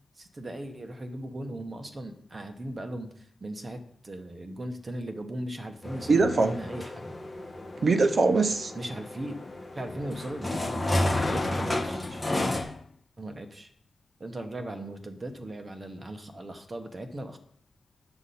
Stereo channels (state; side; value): normal; both; correlation 0.90